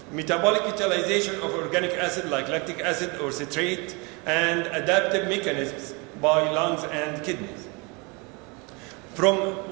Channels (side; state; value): left; quieter; 29.5 dB